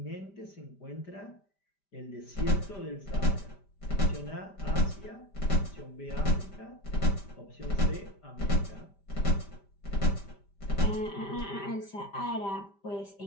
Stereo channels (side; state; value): right; late; 5.1 ms